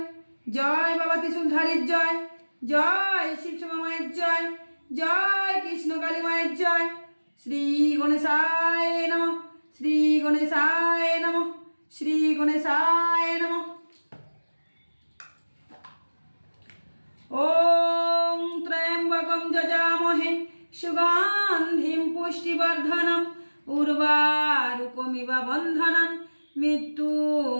জয় বাবা ত্রিশূলধারীর জয়, জয় শিব শ্যামা মায়ের জয়, জয় কৃষ্ণ কালী মায়ের জয়। শ্রী গণেশায় নমঃ, শ্রী গণেশায় নমঃ, শ্রী গণেশায় নমঃ। ওম ত্রয়ম্বকম যজামহে সুগন্ধিম পুষ্টিবর্ধনম উর্বারুকমিব বন্ধনম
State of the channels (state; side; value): inverted; both; correlation -1.00